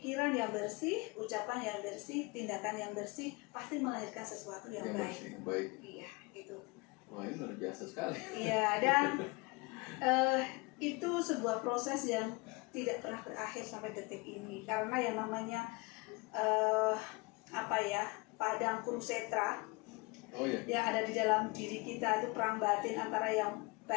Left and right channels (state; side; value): quieter; right; 26.3 dB